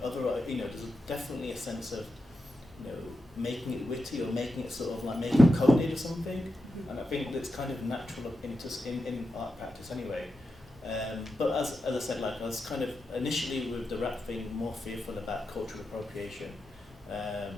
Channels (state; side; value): normal; both; correlation 0.89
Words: definitely a sense of making it witty or making it sort of like making it coded or something, and I think that's kind of natural in art practice anyway. But as I said, like I was kind of initially with the rap thing more fearful about cultural appropriation